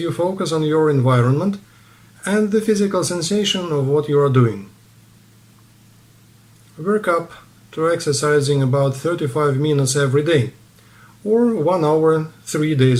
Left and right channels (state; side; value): identical; both; correlation 1.00